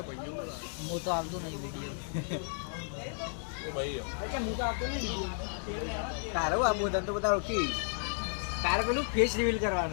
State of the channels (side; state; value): right; silent; 56 dB below the other